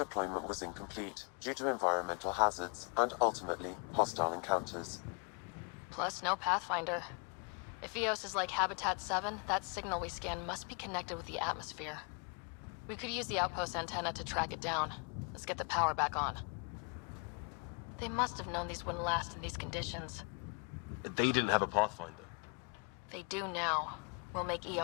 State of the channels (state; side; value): quieter; right; 36.0 dB